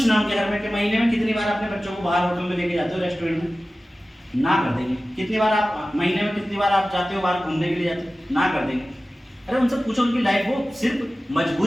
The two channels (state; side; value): normal; both; correlation 0.96